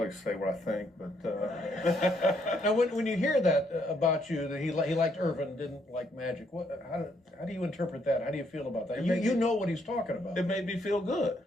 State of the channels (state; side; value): normal; both; correlation 0.72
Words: say what I think, but... Now, when you hear that about you, that he liked Irvin, didn't like Magic, how do you interpret that? How do you feel about that? You know what he's talking about. It made me feel good.